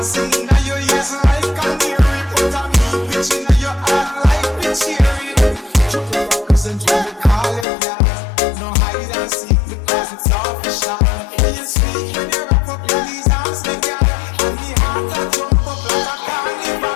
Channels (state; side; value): drops out; right; at 7.7 s